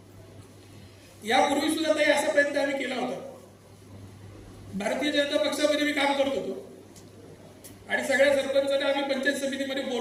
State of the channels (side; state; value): both; identical; correlation 1.00